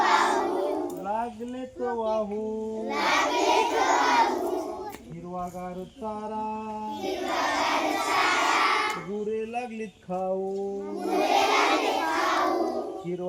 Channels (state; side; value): identical; both; correlation 1.00